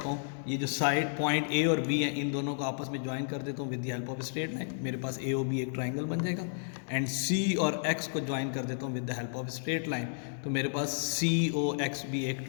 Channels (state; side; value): silent; right; digital silence